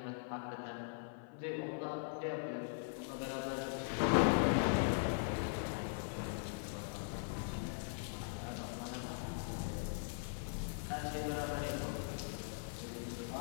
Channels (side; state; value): right; silent; 51 dB below the other